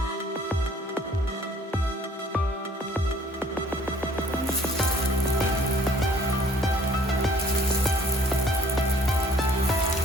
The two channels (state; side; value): normal; both; correlation 0.57